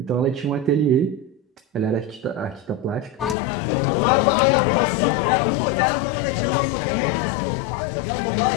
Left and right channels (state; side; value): drops out; right; at 3.4 s